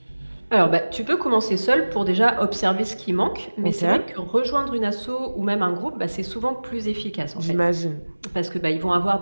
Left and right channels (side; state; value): both; inverted; correlation -1.00